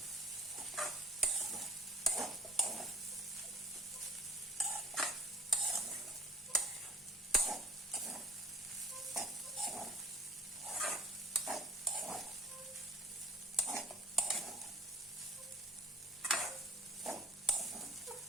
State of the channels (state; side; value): normal; both; correlation 0.46